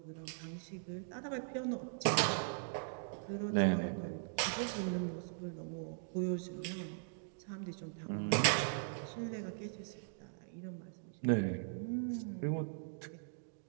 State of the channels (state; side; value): silent; left; digital silence